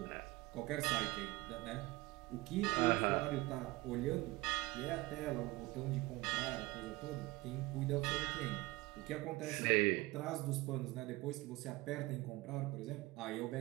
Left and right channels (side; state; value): left; quieter; 20.5 dB